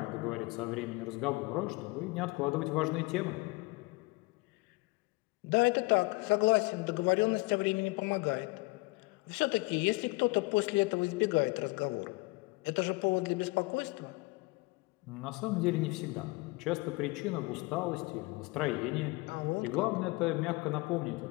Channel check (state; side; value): quieter; right; 24.8 dB